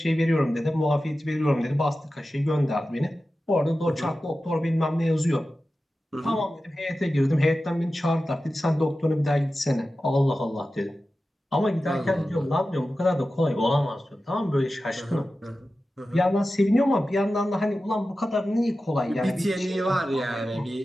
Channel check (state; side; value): normal; both; correlation 0.94